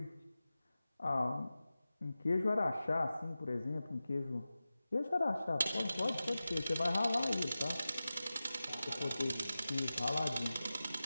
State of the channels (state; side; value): inverted; both; correlation -0.95